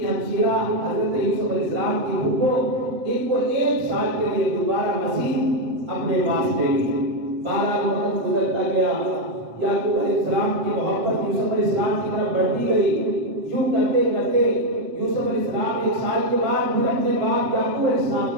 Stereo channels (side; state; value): left; late; 8.0 ms